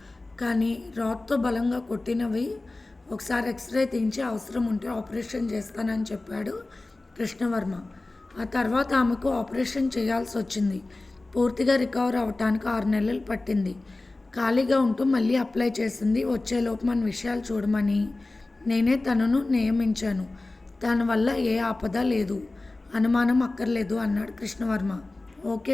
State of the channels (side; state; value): right; quieter; 3.0 dB